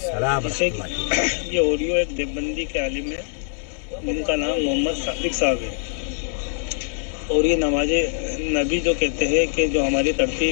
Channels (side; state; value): right; silent; digital silence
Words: जैसे ये ऑडियो एक देवबंदी के आलिम है, उनका नाम मोहम्मद सादिक साहब है, और ये नमाज नबी जो कहते हैं कि जो हमारी